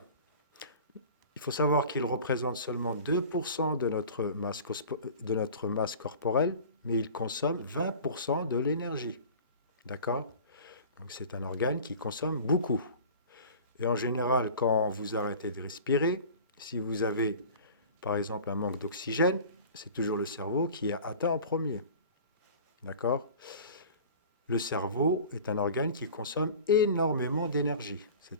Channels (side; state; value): both; inverted; correlation -0.41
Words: Il faut savoir qu'il représente seulement 2% de notre masse corporelle, mais il consomme 20% de l'énergie. D'accord? Donc c'est un organe qui consomme beaucoup. Et en général, quand vous arrêtez de respirer, si vous avez par exemple un manque d'oxygène, c'est toujours le cerveau qui est atteint en premier. D'accord? Le cerveau est un organe qui consomme énormément d'énergie.